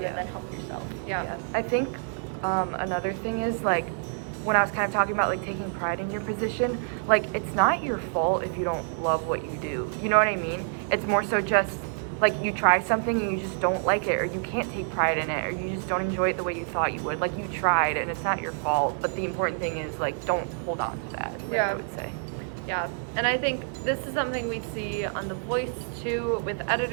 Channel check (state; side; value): silent; left; 60 dB below the other